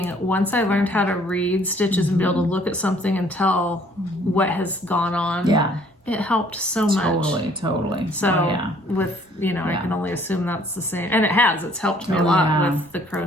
once I learned how to read stitches and be able to look at something and tell what has gone on, it helped so much. Totally. So with, I can only assume that's the same. And it has. It's helped me a lot with the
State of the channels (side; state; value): both; normal; correlation 0.60